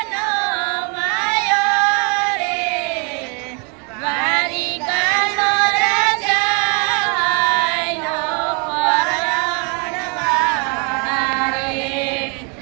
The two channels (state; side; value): quieter; left; 35.1 dB